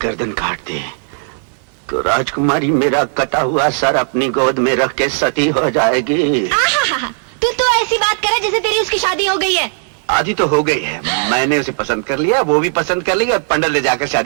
गर्दन काट दी तो राजकुमारी मेरा कटा हुआ सर अपनी गोद में रख के सती हो जाएगी। तू तो ऐसी बात करे जैसे तेरी उसकी शादी हो गई है। आधी तो हो गई है। मैंने उसे पसंद कर लिया, वो भी पसंद कर लिया और पंडित ले जाकर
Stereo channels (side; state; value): left; silent; digital silence